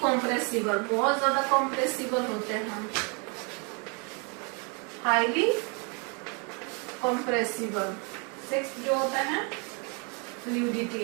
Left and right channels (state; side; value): quieter; left; 34.5 dB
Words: कॉम्प्रेसिबल, बहुत ज्यादा कॉम्प्रेसिबल होते हैं। Highly compressible. 6 जो होता है